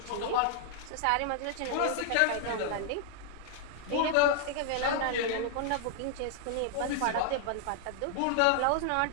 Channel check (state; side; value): different; both; correlation 0.00